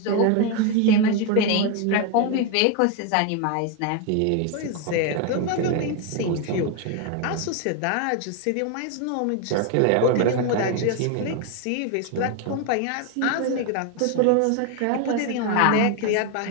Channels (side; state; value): both; different; correlation 0.01